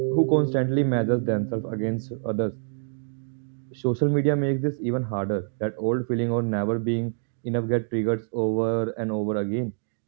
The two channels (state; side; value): silent; left; digital silence